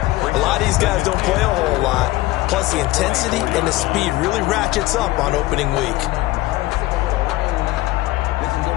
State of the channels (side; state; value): right; quieter; 18.2 dB